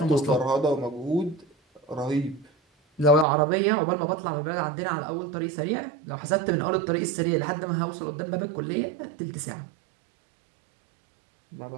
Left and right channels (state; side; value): drops out; left; at 3.2 s